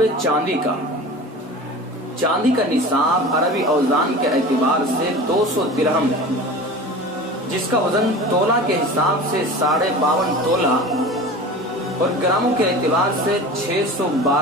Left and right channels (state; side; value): normal; both; correlation 0.36